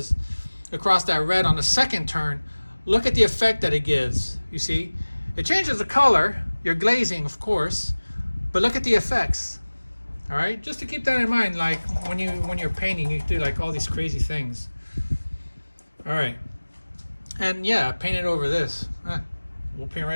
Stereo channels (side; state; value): both; inverted; correlation -1.00